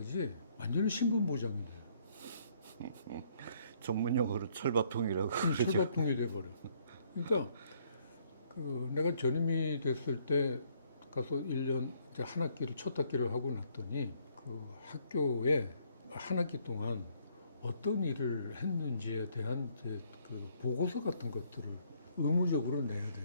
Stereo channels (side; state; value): both; inverted; correlation -0.67